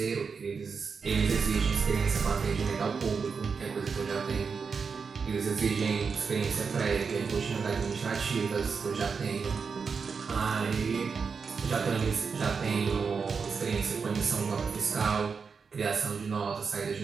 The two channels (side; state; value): left; quieter; 5.5 dB